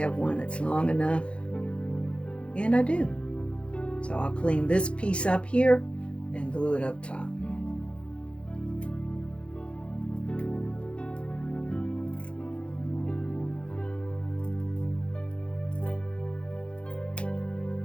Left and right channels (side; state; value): right; late; 0.059 ms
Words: one that's long enough, and I do. So I'll clean this piece up here and glue it up top.